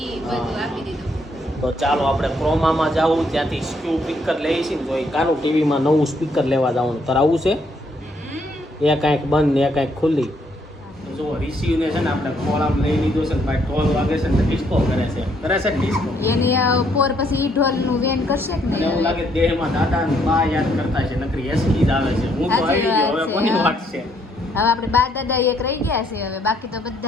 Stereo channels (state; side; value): normal; both; correlation 0.70